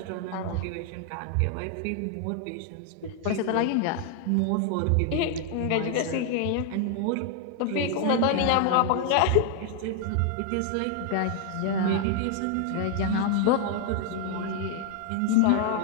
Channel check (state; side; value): different; both; correlation 0.00